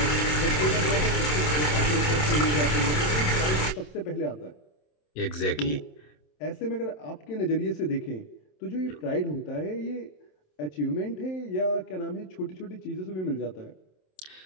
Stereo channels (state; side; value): late; right; 27 ms